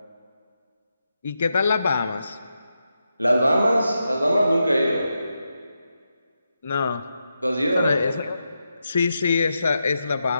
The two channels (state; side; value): inverted; both; correlation -0.87